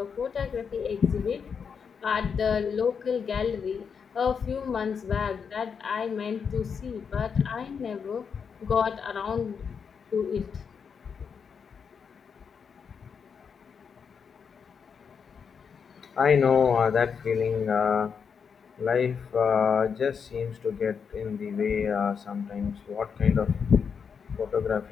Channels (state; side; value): quieter; right; 6.4 dB